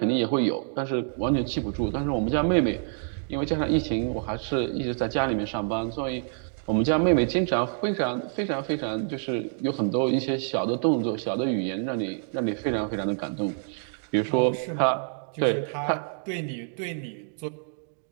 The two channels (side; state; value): left; silent; digital silence